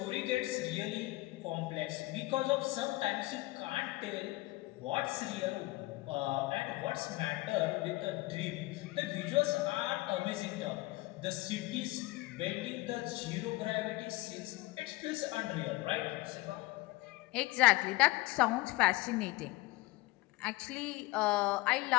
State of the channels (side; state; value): right; quieter; 20.5 dB